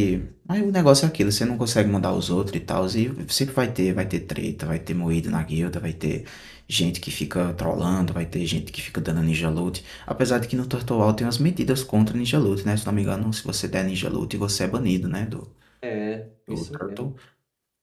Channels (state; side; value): identical; both; correlation 1.00